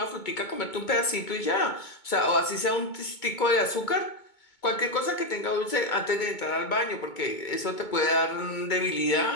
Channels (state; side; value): late; right; 2.2 ms